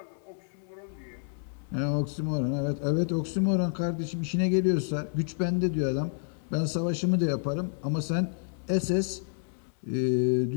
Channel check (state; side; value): silent; right; 58 dB below the other